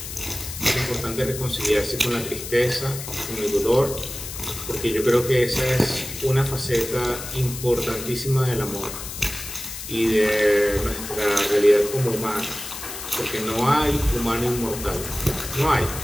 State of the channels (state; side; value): noise; left; hiss, 9 dB below the sound